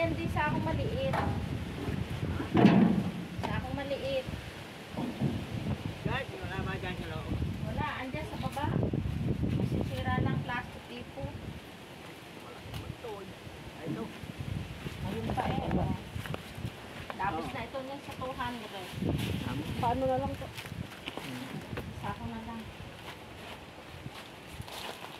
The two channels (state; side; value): identical; both; correlation 1.00